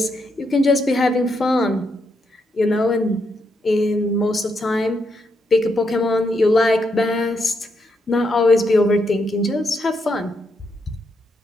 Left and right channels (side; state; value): both; normal; correlation 0.80